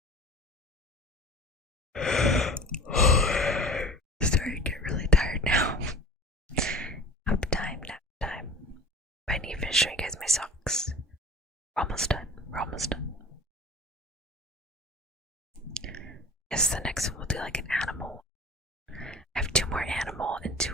Starting to get really tired now. Nap time, nap time. I need to finish showing you guys my socks. We're almost done. We're almost done. Yes, the next one will do like an animal. I have 2 more animal and 2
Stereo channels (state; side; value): normal; both; correlation 0.38